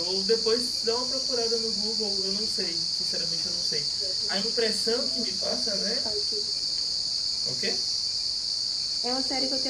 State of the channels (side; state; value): both; identical; correlation 1.00